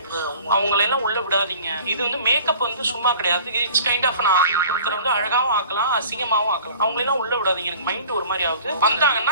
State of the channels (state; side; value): inverted; both; correlation -0.46